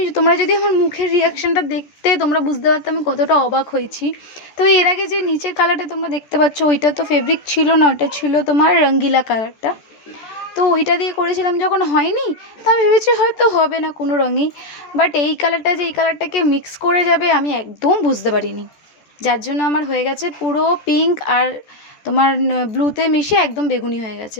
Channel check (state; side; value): late; right; 14 ms